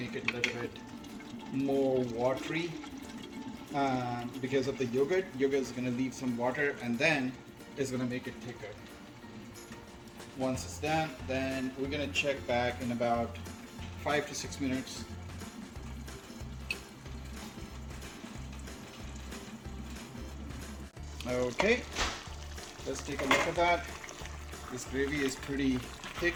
it a little bit more watery because of the yogurt. Yogurt is going to leave some water and then it's going to make it thicker. Once it's done, then we're going to check back in about 5 to 6 minutes. Okay, let's take a look at that. This gravy is pretty thick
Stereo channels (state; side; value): identical; both; correlation 1.00